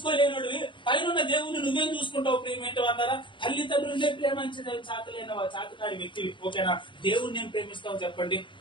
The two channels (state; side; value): late; right; 0.24 ms